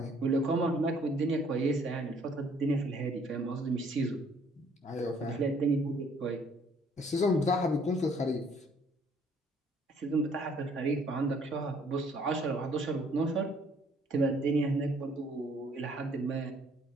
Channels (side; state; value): both; normal; correlation 0.62